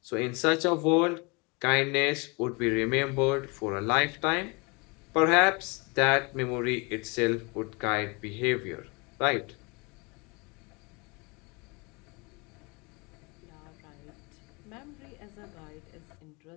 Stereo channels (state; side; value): quieter; right; 29.5 dB